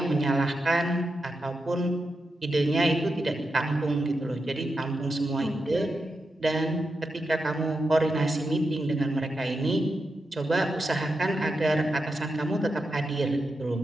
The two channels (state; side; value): normal; both; correlation 0.88